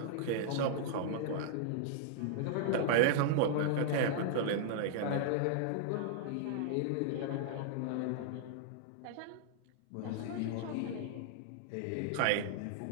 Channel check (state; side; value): different; both; correlation -0.01